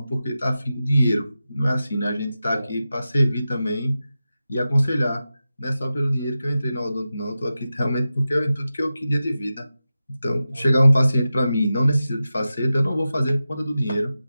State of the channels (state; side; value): inverted; both; correlation -0.93